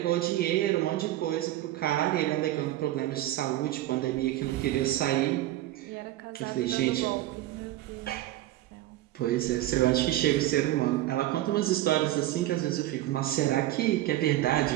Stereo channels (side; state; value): left; quieter; 14.8 dB